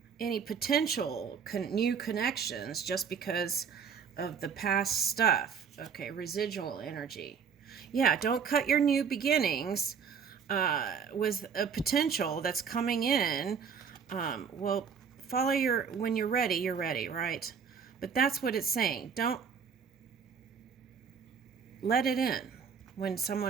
any potential new connections just because of the past stuff. Okay, residual energy. Yeah, don't cut your new beginnings with a potential that's coming in. Well, follow when you're ready, right? But that's what it's saying. Don't let it in when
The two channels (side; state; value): left; quieter; 6.6 dB